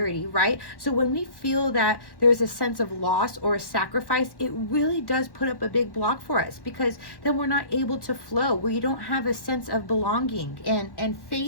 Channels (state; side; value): late; right; 1.1 ms